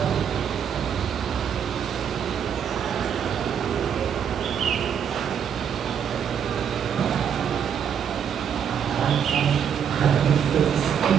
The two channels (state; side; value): quieter; left; 8.0 dB